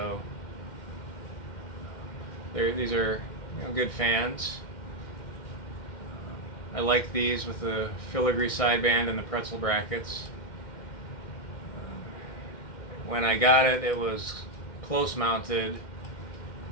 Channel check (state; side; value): late; right; 1.6 ms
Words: these are good fans. I like these with the filigree sideband and the pretzel brackets. When I got it, it was close mounted,